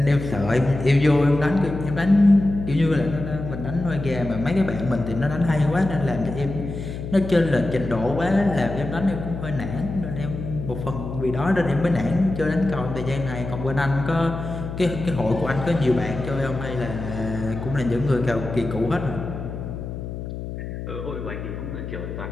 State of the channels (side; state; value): left; noise; hum, 7 dB below the sound